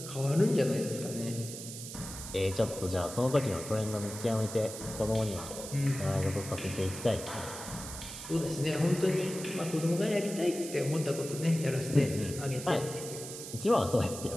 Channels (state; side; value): noise; right; hiss, 10 dB below the sound